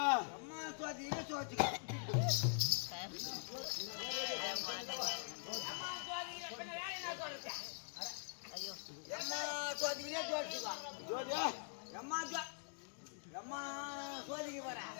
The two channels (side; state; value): right; silent; digital silence